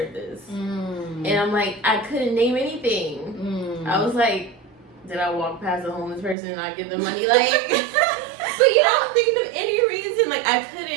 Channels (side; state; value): left; drops out; at 6.4 s